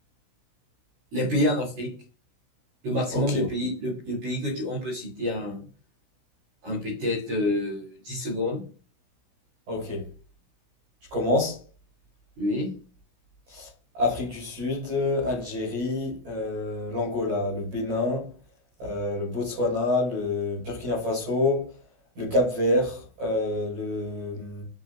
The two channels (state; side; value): late; left; 16 ms